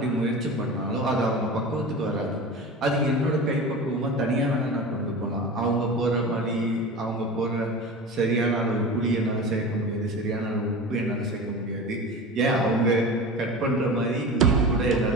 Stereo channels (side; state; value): both; normal; correlation 0.31